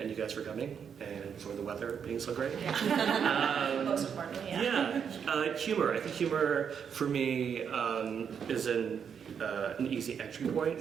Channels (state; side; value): quieter; left; 7.3 dB